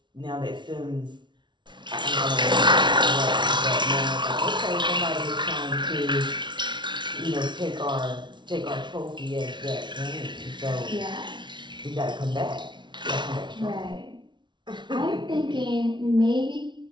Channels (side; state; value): left; late; 0.23 ms